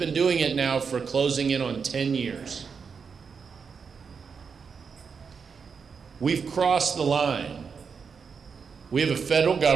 doing it now for closing in on 10 years. We've crossed the line. We have a federal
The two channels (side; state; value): left; quieter; 5.9 dB